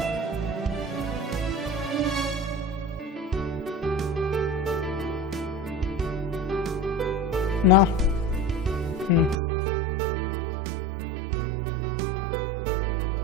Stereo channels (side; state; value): left; drops out; at 9.3 s